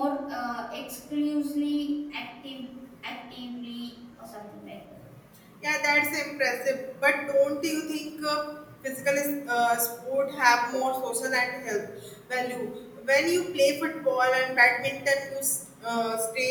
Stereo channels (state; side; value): identical; both; correlation 1.00